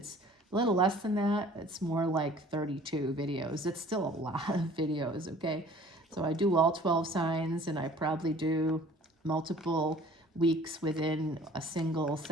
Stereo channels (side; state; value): both; normal; correlation 0.51